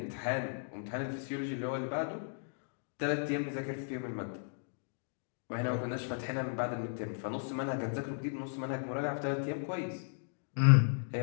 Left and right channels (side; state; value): right; silent; digital silence